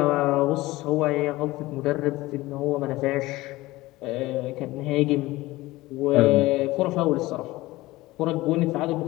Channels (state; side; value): quieter; right; 18.9 dB